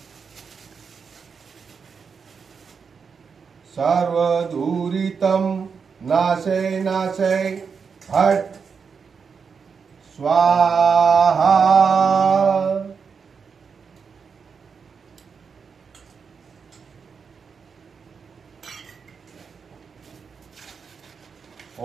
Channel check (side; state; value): left; quieter; 5.9 dB